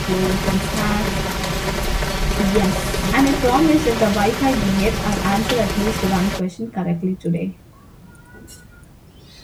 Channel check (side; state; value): both; identical; correlation 1.00